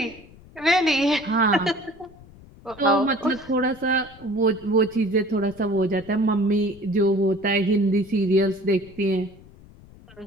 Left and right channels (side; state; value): left; noise; rumble, 23 dB below the sound